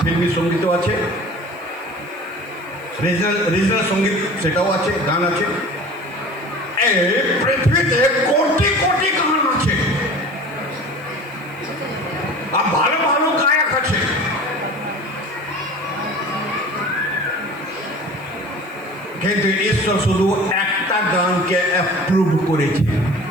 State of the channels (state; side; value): noise; right; hiss, 27 dB below the sound